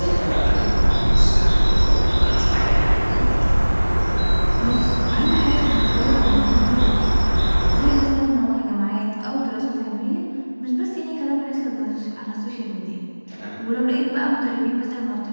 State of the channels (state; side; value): inverted; both; correlation -1.00